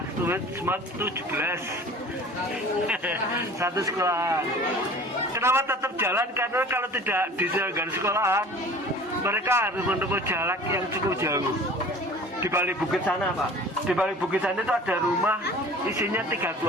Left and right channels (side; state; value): both; normal; correlation 0.44